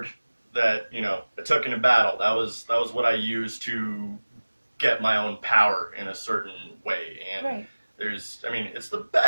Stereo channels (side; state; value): both; inverted; correlation -1.00